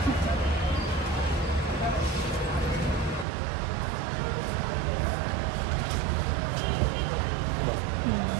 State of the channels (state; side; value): drops out; left; at 3.2 s